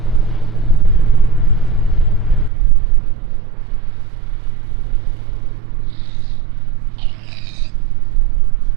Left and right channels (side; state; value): left; drops out; at 2.5 s